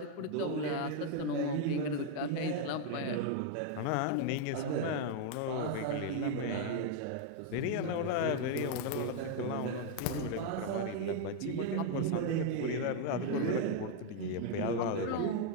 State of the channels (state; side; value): different; both; correlation 0.00